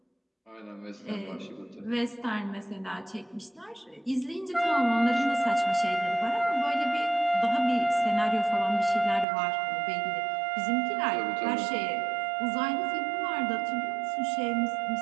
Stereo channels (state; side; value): drops out; left; at 9.2 s